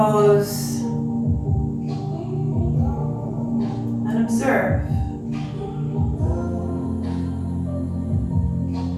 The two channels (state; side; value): identical; both; correlation 1.00